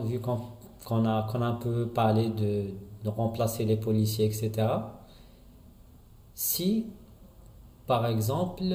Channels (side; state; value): both; identical; correlation 1.00